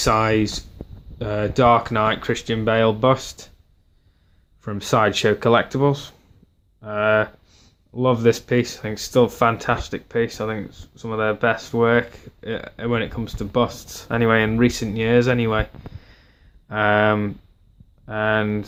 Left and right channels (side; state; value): both; identical; correlation 1.00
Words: Dark Knight Christian Bale bust from Sideshow Collectibles. Love this piece. I think it's still a fantastic piece. I think it's some of their best work. when it comes to busts. Anyway, in recent years, anyway, and